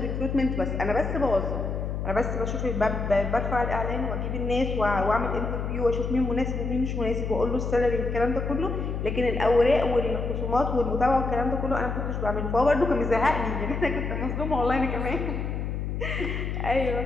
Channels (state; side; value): noise; left; hum, 3 dB below the sound